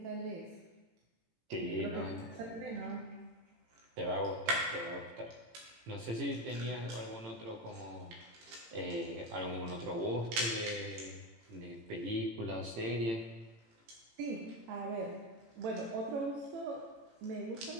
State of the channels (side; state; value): left; late; 18 ms